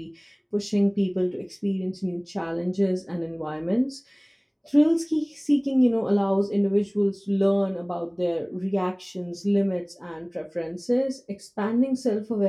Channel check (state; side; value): identical; both; correlation 1.00